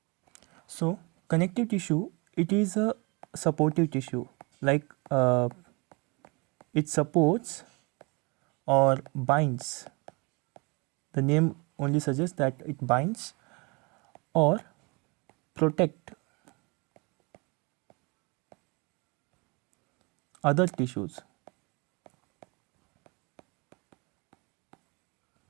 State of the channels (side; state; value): left; quieter; 28.9 dB